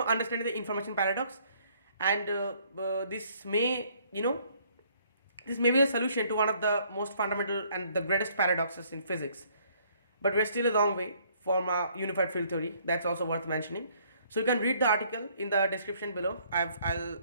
understanding the information paradox, and this may this may be the solution to one of the most fundamental and the greatest paradoxes in physics. But we're still a long way from a unified field theory. That's also worth mentioning. So you can read the article in the description below. I'll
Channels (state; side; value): inverted; both; correlation -0.63